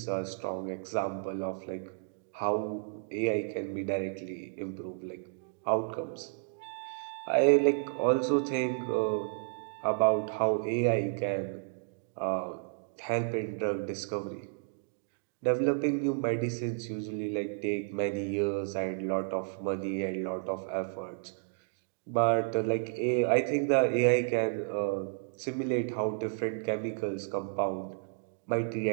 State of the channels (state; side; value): silent; left; digital silence